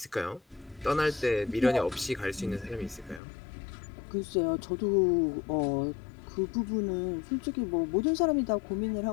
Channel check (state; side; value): drops out; right; at 3.2 s